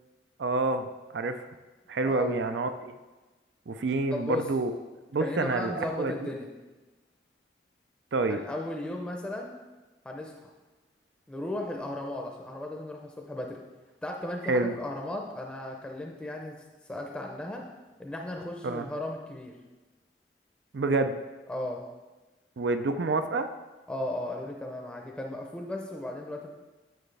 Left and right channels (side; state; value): both; normal; correlation 0.31